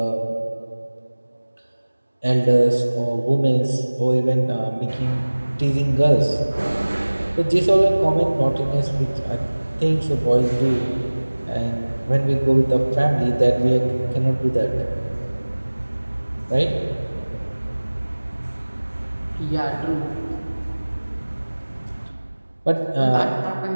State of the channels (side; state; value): both; inverted; correlation -1.00